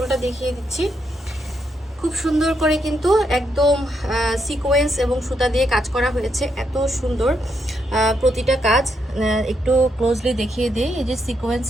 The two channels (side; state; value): both; normal; correlation 0.79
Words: দেখিয়ে দিচ্ছি। খুব সুন্দর করে কিন্তু একদম সিকোয়েন্স এবং সুতা দিয়ে কাজ করা হয়েছে, এত সুন্দর প্রতিটা কাজ। একটু ক্লোজলি দেখিয়ে দিই। এই যে সিকোয়েন্স